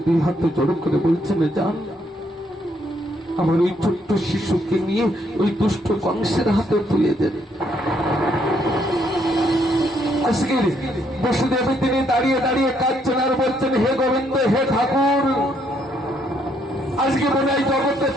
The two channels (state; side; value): normal; both; correlation 0.71